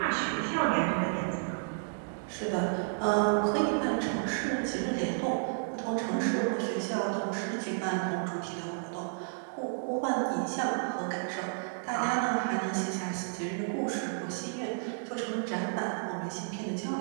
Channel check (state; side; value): silent; left; digital silence